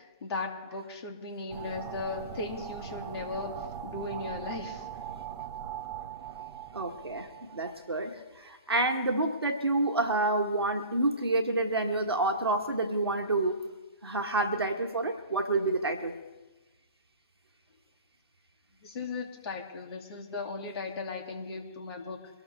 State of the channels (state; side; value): inverted; both; correlation -0.37